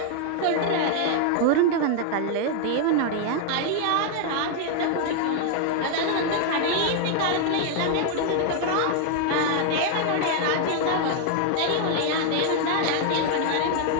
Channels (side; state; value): both; different; correlation 0.00